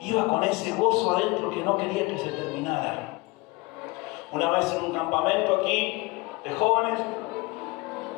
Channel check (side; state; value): right; quieter; 23.7 dB